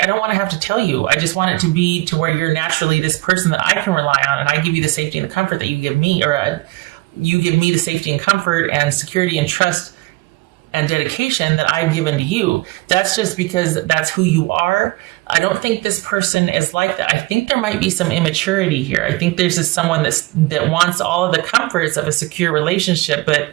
I don't want to have to tell you. I just want it to be to where you're naturally this person that I can rely on, and I give you the safety and the comfort that you give me, or you give me the safety and comfort and security and trust and dedication that I've given to you. That's just because that's who you are. I don't think this person is like that. I think there might be some immaturity here. I think there's just someone that wants all of the comforts of a secure relationship,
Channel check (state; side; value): quieter; left; 21.9 dB